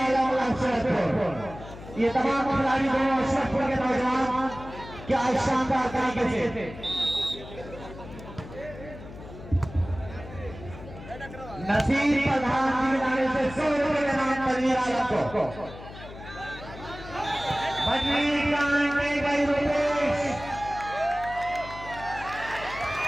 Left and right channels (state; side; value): noise; left; hum, 14 dB below the sound